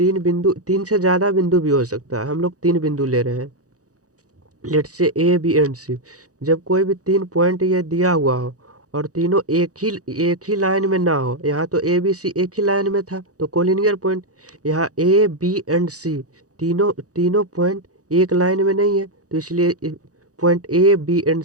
बिंदु, तीन से ज़्यादा बिंदु भी हो सकता है, हम लोग तीन बिंदु ले रहे हैं, लेट से A B एंड C, जब कोई भी 3 पॉइंट ये दिया हुआ हो और तीनों एक ही लाइन में ना हो, यहाँ तो A B C एक ही लाइन में था तो कोलिनियर पॉइंट। यहाँ A B एंड C तीनों पॉइंट एक लाइन में नहीं है, तो इसलिए point A B and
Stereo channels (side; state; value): left; late; 0.67 ms